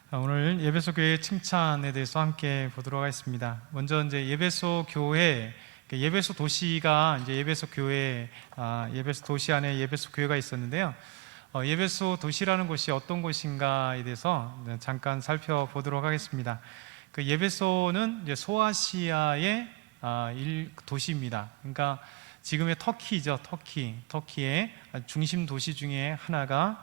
오늘 예배소 교회 칭찬에 대해서 함께 보도록 하겠습니다. 먼저 이제 예배소 교회, 예배소 도시가 이제 예배소 교회, 예배소 도시 안에 예배소 교회가 있었는데요. 예배소 도시라는 곳이 어떤 곳인가에 대해서 잠깐 살펴보도록 하겠습니다. 그 예배소는 이제 소아시아의 도시입니다. 그러니까 지금의 터키죠, 터키의 중심 도시 중에 하나가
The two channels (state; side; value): quieter; left; 22.4 dB